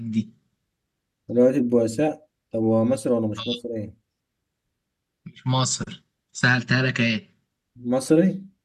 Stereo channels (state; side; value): identical; both; correlation 1.00